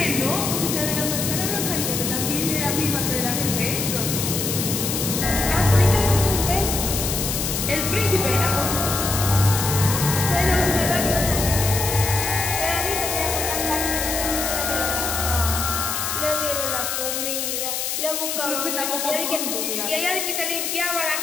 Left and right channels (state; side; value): noise; left; hiss, 2 dB below the sound